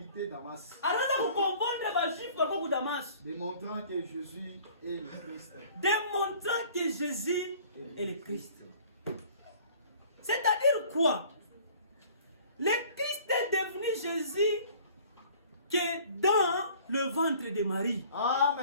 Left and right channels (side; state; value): both; inverted; correlation -0.51